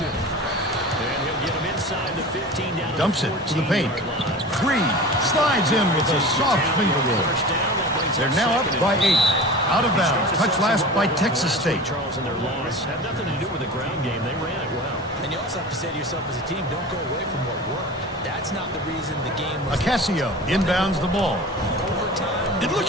And he'll get him inside the 15 down. Dumps it to the paint. 3. Slides in with a soft finger roll. They're now up by 8. Out of bounds. Touch last by Texas State. Charles and their loss had nothing to do with the ground game. They ran it well. And you also have to say to yourself as a team, don't go away from what worked. That's not the reason the game was. Acasio inbounds the ball. It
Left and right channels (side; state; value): both; normal; correlation 0.35